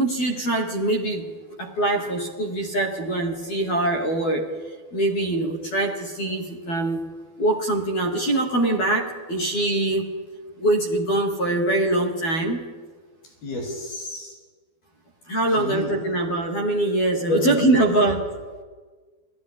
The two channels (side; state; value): right; late; 12 ms